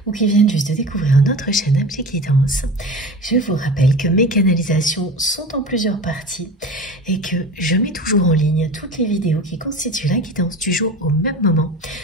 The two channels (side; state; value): both; normal; correlation 0.33